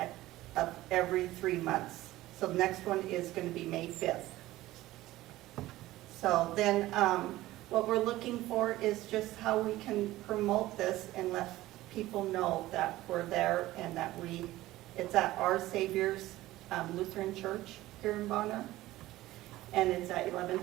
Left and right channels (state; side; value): quieter; left; 16.6 dB